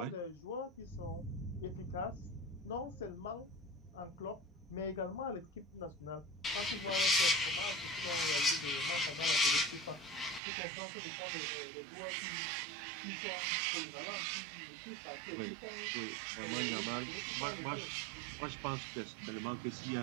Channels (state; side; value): drops out; left; at 10.4 s